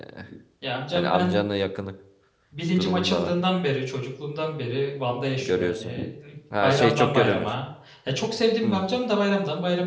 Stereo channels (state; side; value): identical; both; correlation 1.00